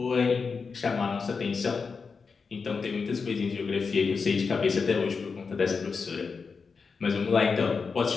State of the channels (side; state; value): right; quieter; 5.1 dB